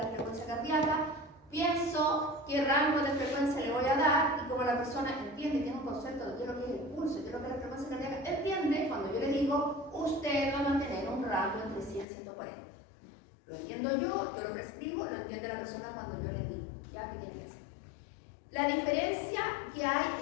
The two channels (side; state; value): right; drops out; at 12.1 s